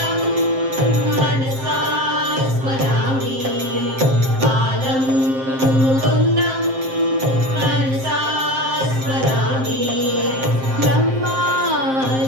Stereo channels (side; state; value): left; late; 7.6 ms